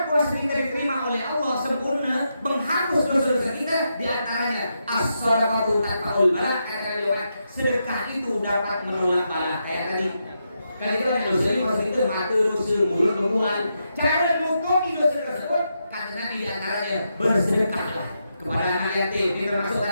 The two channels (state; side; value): inverted; both; correlation -0.84